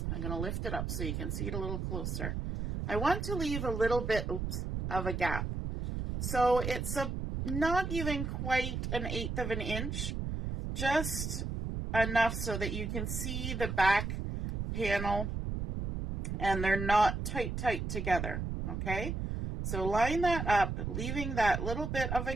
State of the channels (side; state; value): right; noise; rumble, 3 dB below the sound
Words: I'm going to lift it up so you can see it a little closer. I want to leave a little bit of a gap. So it's not even quite 1/8 of an inch, just enough so that you can see the back panel and they're not tight together, okay? So line that up, leaving that little bit of a